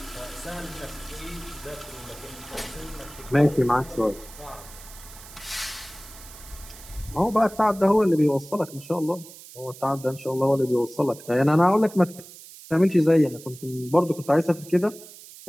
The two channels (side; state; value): right; noise; hiss, 18 dB below the sound